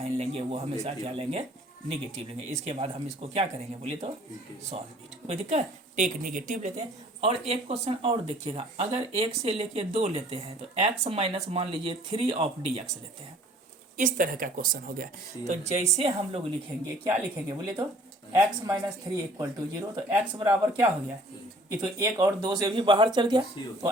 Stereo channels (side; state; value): both; normal; correlation 0.54